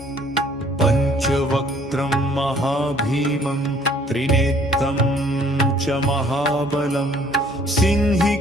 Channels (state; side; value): normal; both; correlation 0.59